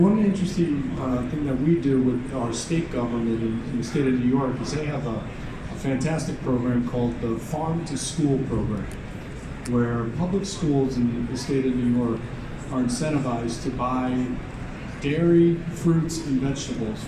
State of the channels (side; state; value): both; identical; correlation 1.00